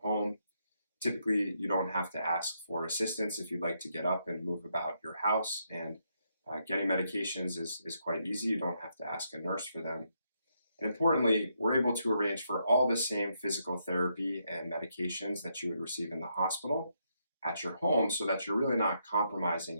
home. Typically, you don't have to ask for assistance if you'd like to get up and move about your house, and getting medications is quite easy. You don't have to ask a nurse for them. And importantly, we're able to arrange for all the same physical therapy and medications that you would receive in the hospital at your home, so that you're really not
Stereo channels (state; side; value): inverted; both; correlation -0.78